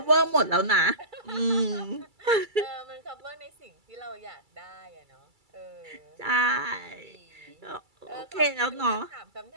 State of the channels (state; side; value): late; left; 2.3 ms